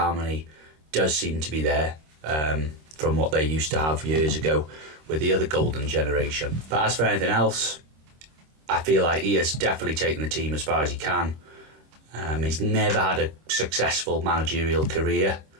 does seem to be there from what they used to have years ago with the other golden generation. But as for anything else, I feel like he has definitely taken the team as far as he can. He's never had a successful managerial career,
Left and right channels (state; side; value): late; left; 26 ms